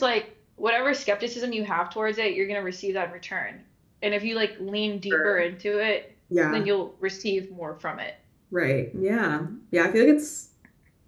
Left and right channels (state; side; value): identical; both; correlation 1.00